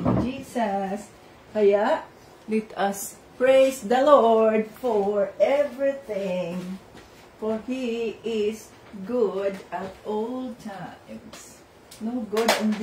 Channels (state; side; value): identical; both; correlation 1.00